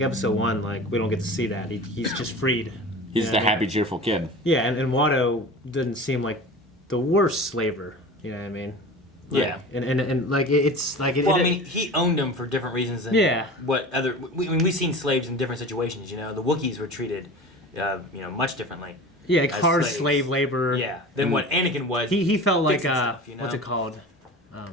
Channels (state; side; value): normal; both; correlation 0.35